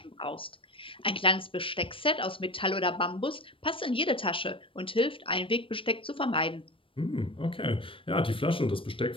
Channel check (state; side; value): late; right; 0.25 ms